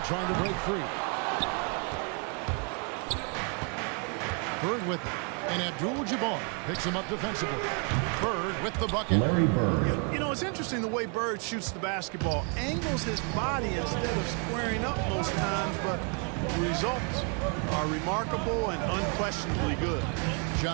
trying to break free. Bird with it. And Abdul-Jabbar picks him up defensively. Bird with the bucket. Larry Bird. You know, it's interesting the way Bird shoots the basketball. Angles his body instead of squaring up most times, but the results are remarkable and unquestionably good.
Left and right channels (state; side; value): quieter; left; 38.4 dB